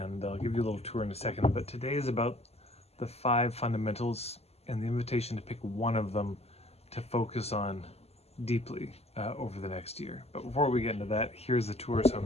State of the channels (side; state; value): right; late; 0.30 ms